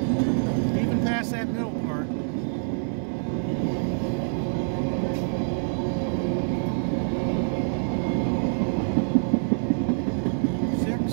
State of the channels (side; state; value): left; silent; digital silence